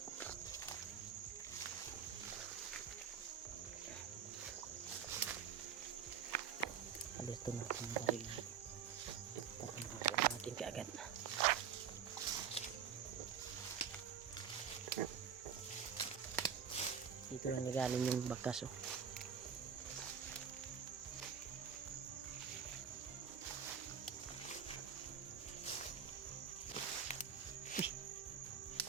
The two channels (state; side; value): quieter; left; 7.6 dB